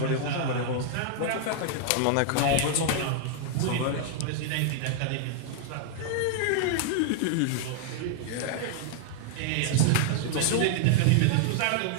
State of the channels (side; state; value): both; different; correlation 0.00